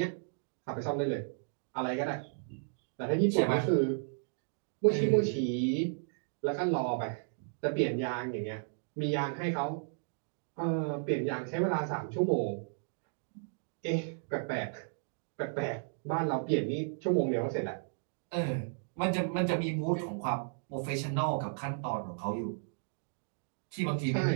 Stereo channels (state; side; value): silent; left; digital silence